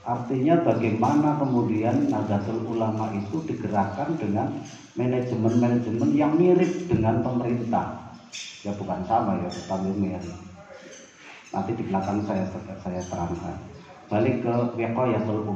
Artinya bagaimana kemudian Nahdlatul Ulama itu digerakkan dengan manajemen-manajemen yang mirip dengan pemerintah. Ya bukan sama ya, tetapi mirip. Nanti di belakang saya terangkan. Balik ke wiqayatul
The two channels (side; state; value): both; identical; correlation 1.00